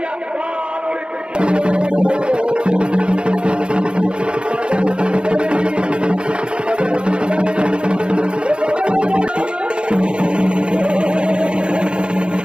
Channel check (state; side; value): late; left; 0.054 ms